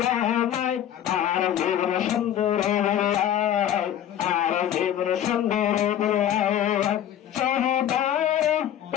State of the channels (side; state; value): right; quieter; 10.8 dB